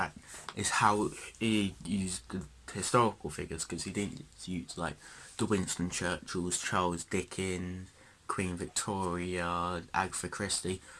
how he used the historical figures, because he didn't use like the Winston Churchills, Charles Dickens, Queen Victoria, Agatha Christie,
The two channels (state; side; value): identical; both; correlation 1.00